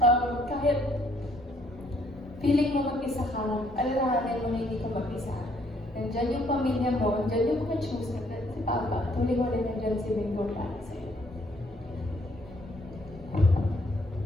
kahit feeling mo mag-isa ka, alalahanin mo na hindi ka mag-isa. Nandiyan yung pamilya mo, nandiyan yung mga chosen, at si Papa, tuloy mo rin nandiyan si Bingo para sa'yo.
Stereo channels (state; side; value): normal; both; correlation 0.66